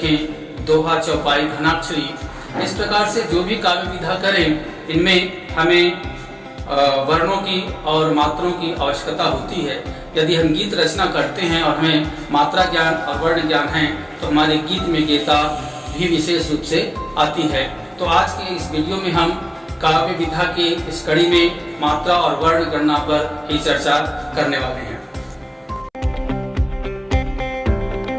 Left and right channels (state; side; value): identical; both; correlation 1.00